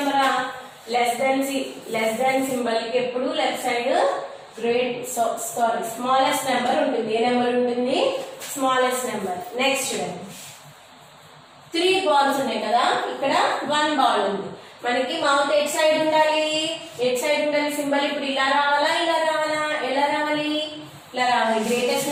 లెస్ దాన్ సింబల్ కి ఎప్పుడు లెఫ్ట్ సైడ్ స్మాలెస్ట్ నెంబర్ ఉంటుంది. ఏ నెంబర్ ఉంటుంది, స్మాలెస్ట్ నెంబర్. నెక్స్ట్ చూడండి, 3 balls ఉన్నాయి కదా, ఇక్కడ 1 ball ఉంది. మనకి మౌత్ ఎట్ సైడ్ ఉండాలి, సింబల్ ఇప్పుడు ఇలా రావాలా, ఇలా రావాలా, ఎలా రావాలి, ఇలా రావాలి. గ్రేటెస్ట్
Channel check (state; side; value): identical; both; correlation 1.00